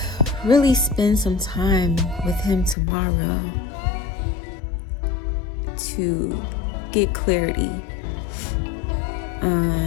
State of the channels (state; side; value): drops out; right; at 2.8 s